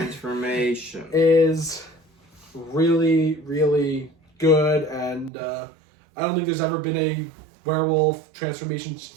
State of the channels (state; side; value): drops out; left; at 5.3 s